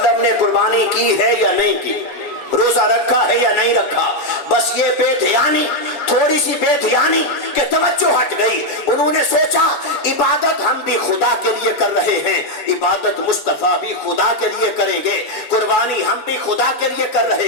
نے قربانی کی ہے یا نہیں کی، روزہ رکھا ہے یا نہیں رکھا۔ بس یہ بے دھیانی، تھوڑی سی بے دھیانی کہ توجہ ہٹ گئی، انہوں نے سوچا عبادت ہم بھی خدا کے لیے کر رہے ہیں، عبادت مصطفیٰ بھی خدا کے لیے کریں گے، قربانی ہم بھی خدا کے لیے کر رہے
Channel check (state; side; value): late; right; 7.0 ms